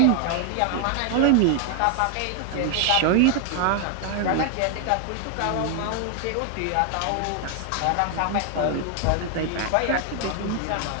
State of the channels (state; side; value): different; both; correlation 0.00